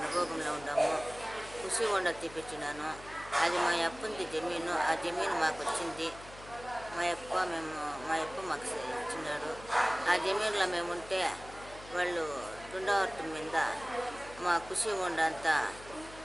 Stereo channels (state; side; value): noise; left; hum, 18 dB below the sound